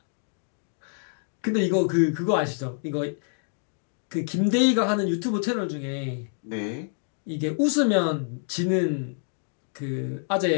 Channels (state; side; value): silent; right; digital silence